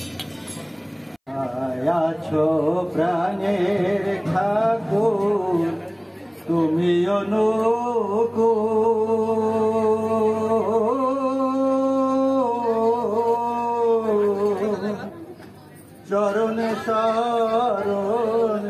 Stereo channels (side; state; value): both; identical; correlation 1.00